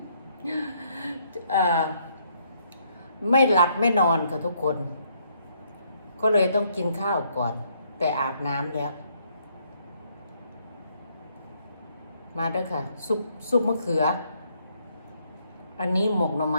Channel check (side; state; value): both; inverted; correlation -0.71